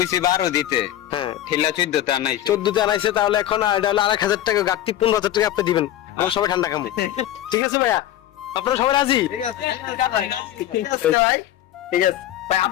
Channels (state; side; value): quieter; right; 12.6 dB